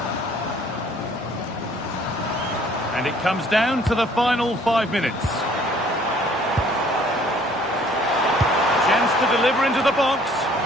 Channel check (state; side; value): normal; both; correlation 0.58